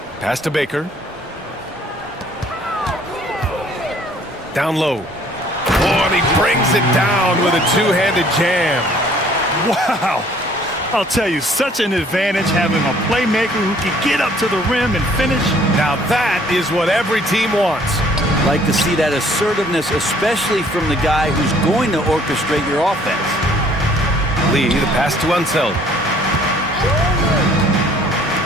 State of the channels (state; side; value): normal; both; correlation 0.58